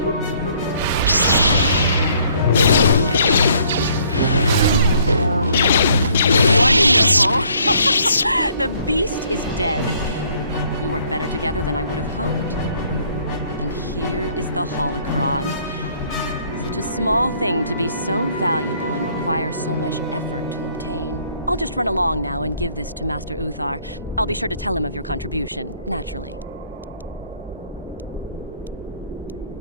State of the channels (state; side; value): inverted; both; correlation -0.62